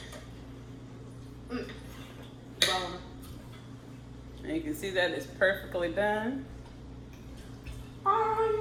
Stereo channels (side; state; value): both; identical; correlation 1.00